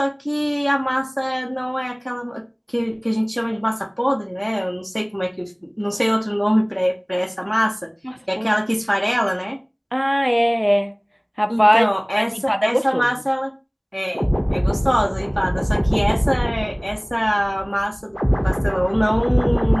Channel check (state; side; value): identical; both; correlation 1.00